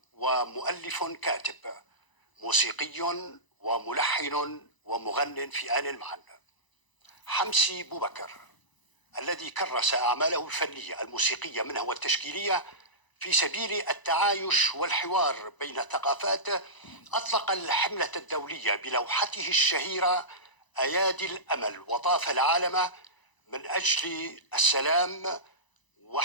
ومؤلف كاتب، موسيقي وملحن ومغن في آن معا. حمسي بوبكر الذي كرس أعماله الفنية الموسيقية منها والتشكيلية في سبيل التعايش والحوار بين الثقافات، أطلق الحملة الدولية بلوحته الشهيرة أيادي الأمل، وطاف العالم من أجل السلام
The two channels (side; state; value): right; late; 1.0 ms